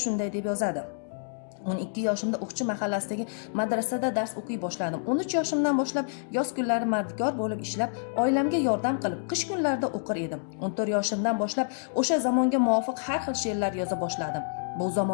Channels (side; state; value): right; silent; digital silence